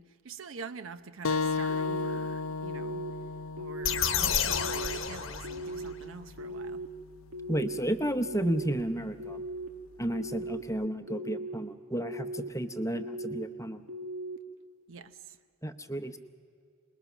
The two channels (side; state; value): both; normal; correlation 0.31